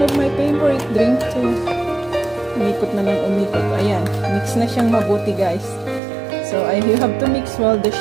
of my favorite drink too. Umikot na lang umikot. Ayan, mix na siyang mabuti, guys. So, you have to mix well the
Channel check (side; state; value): left; drops out; at 6.0 s